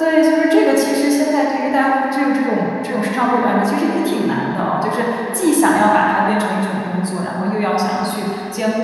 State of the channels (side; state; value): both; identical; correlation 1.00